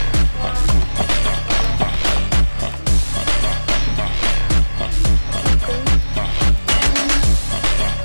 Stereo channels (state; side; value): inverted; both; correlation -1.00